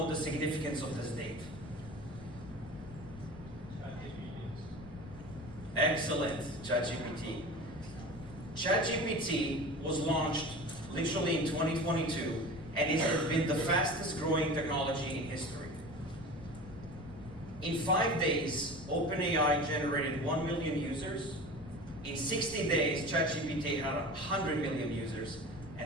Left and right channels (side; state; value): left; noise; rumble, 16 dB below the sound